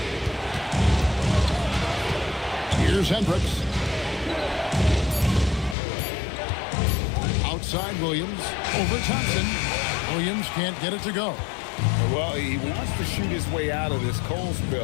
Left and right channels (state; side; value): drops out; right; at 5.8 s